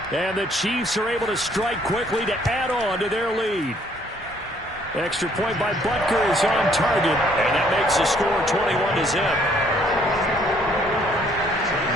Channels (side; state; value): both; normal; correlation 0.64